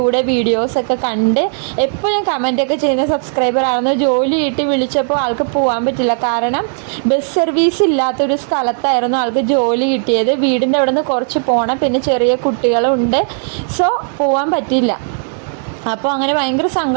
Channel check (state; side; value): silent; left; 69 dB below the other